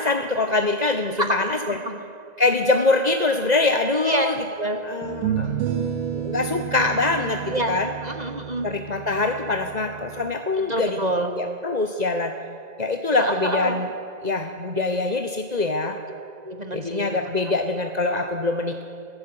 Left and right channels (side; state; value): left; late; 2.0 ms